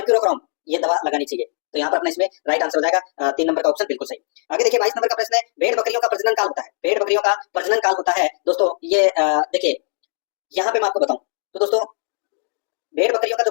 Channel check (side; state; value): right; silent; digital silence